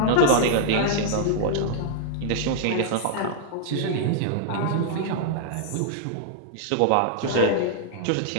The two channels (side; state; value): both; different; correlation -0.01